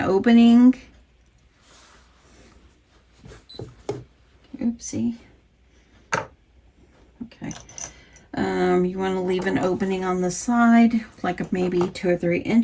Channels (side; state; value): both; identical; correlation 1.00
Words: Oopsie. Okay. You want to leave an opening on the side, like maybe 2 or 3